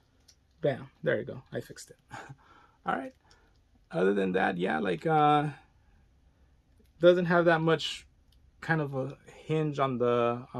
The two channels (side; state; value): both; identical; correlation 1.00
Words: Bam, there you go. I fixed it. All right. Other than that, yeah, like doesn't have that much kind of a hinge on the